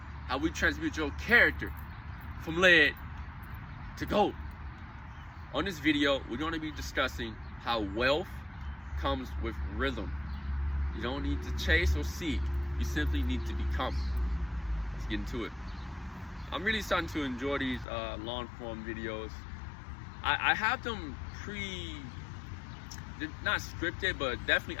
how we transmute your character from lead to gold. On this video, we're going to be discussing how wealth comes with rhythm. You don't need to chase or seek, you simply need to become. Let's get into it. I'm really starting to enjoy these long form videos. I have them they're not scripted, but definitely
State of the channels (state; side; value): drops out; right; at 17.9 s